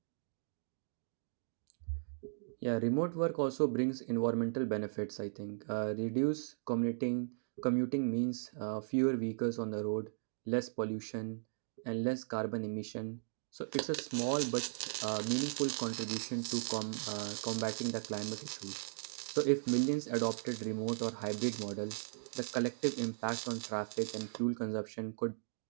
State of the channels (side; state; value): left; silent; digital silence